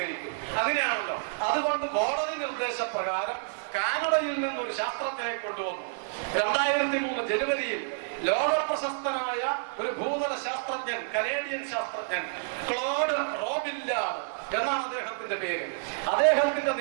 അങ്ങനെയാണല്ലോ. അതുകൊണ്ട് കോടതി നിർദ്ദേശപ്രകാരം കാനഡയിൽ നിന്നൊരു ശാസ്ത്രജ്ഞനെ കൊണ്ടുവന്നു. 2003 ജനുവരിയിൽ ലോക പ്രശസ്തനായ ഒരു ഭൂതല ശാസ്ത്രജ്ഞൻ, കനേഡിയൻ ശാസ്ത്രജ്ഞൻ ക്ലോഡ് റോബില്ലാർഡ് എന്നാണ് അദ്ദേഹത്തിന്റെ പേര്. അദ്ദേഹത്തിന്റെ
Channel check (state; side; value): silent; left; digital silence